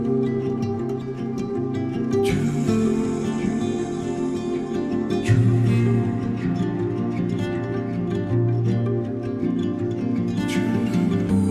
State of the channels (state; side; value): identical; both; correlation 1.00